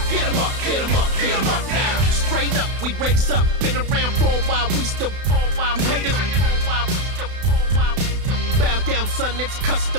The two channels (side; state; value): left; late; 32 ms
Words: Get 'em up, get 'em up, get 'em up now. Straight up, we raise up. Been around for a while, we still fall while you haters. Bow down, son, it's